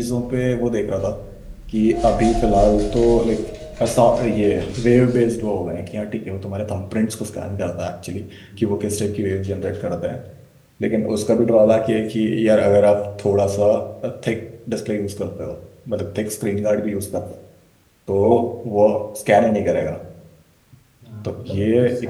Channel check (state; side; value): identical; both; correlation 1.00